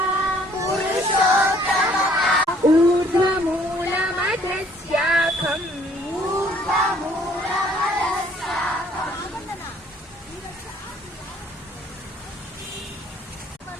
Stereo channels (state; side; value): normal; both; correlation 0.60